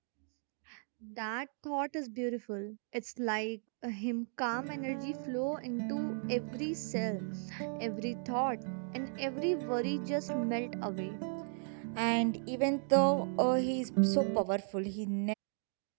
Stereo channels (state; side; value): silent; left; 54 dB below the other